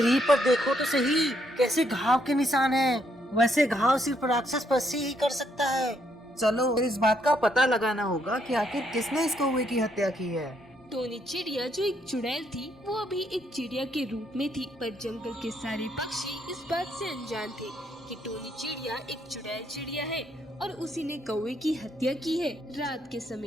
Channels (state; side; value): normal; both; correlation 0.73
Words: पर देखो तो सही, कैसे घाव के निशान हैं। वैसे घाव सिर्फ राक्षस पक्षी ही कर सकता है। चलो इस बात का पता लगाना होगा कि आखिर किसने इस कौवे की हत्या की है। टोनी चिड़िया जो एक चुड़ैल थी वो अभी एक चिड़िया के रूप में थी, पर जंगल के सारे पक्षी इस बात से अनजान थे कि टोनी चिड़िया एक चुड़ैल चिड़िया है और उसी ने कौवे की हत्या की है रात के